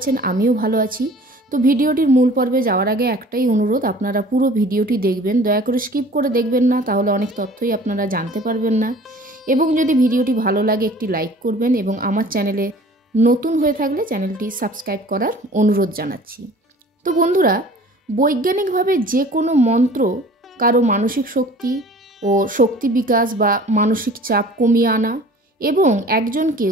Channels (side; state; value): both; normal; correlation 0.47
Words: আমিও ভালো আছি। তো ভিডিওটির মূল পর্বে যাওয়ার আগে একটাই অনুরোধ, আপনারা পুরো ভিডিওটি দেখবেন, দয়া করে স্কিপ করে দেখবেন না, তাহলে অনেক তথ্যই আপনারা জানতে পারবেন না। এবং যদি ভিডিওটি ভালো লাগে একটি লাইক করবেন এবং আমার চ্যানেলে নতুন হয়ে থাকলে চ্যানেলটি সাবস্ক্রাইব করার অনুরোধ জানাচ্ছি। তো বন্ধুরা, বৈজ্ঞানিকভাবে যে কোনো মন্ত্র কারো মানসিক শক্তি ও শক্তি বিকাশ বা মানসিক চাপ কমিয়ে আনা এবং একজনকে